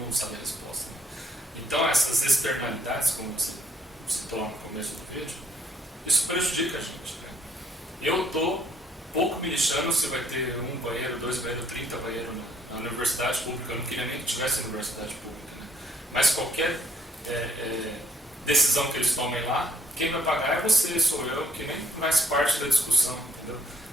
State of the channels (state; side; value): normal; both; correlation 0.65